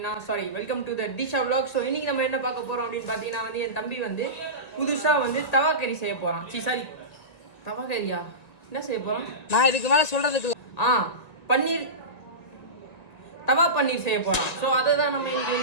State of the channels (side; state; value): right; late; 1.9 ms